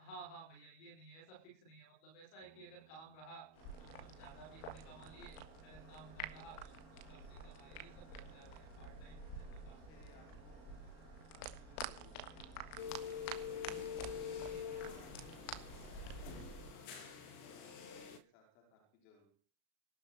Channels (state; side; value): late; right; 37 ms